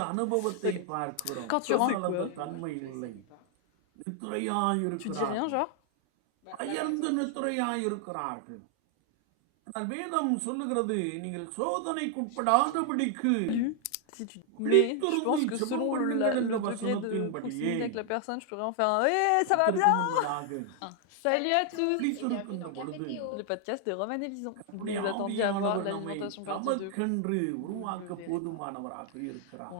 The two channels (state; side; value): different; both; correlation 0.00